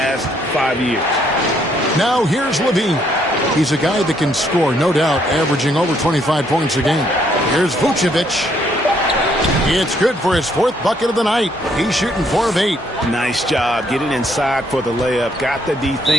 5 years. Now here's Levine. He's a guy that can score, no doubt, averaging over 25 points a game. Here's Vucevic. It's good for his 4th bucket of the night. He's shooting 4 of 8. Nice job getting inside for the layup. Got the D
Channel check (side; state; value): both; normal; correlation 0.69